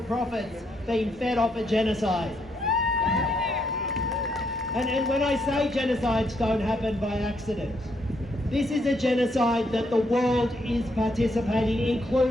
profits being fed off a genocide. And when I say genocides don't happen by accident, this is a genocide that the world is participating,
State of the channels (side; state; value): both; normal; correlation 0.76